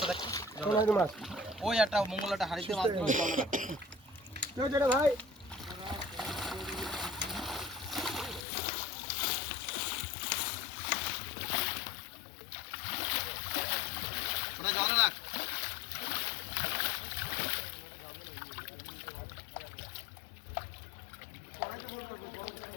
রাখতো কোন হাড়ি মাছ ওই একটা মঙ্গলাটা হাড়িতে মাছ দিয়ে জলে রাখতো কেউ যেটা ভাই ওটা জলে রাখ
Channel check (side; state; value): right; drops out; at 8.5 s